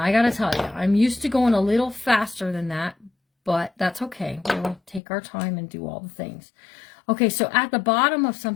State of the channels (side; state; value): right; drops out; at 5.0 s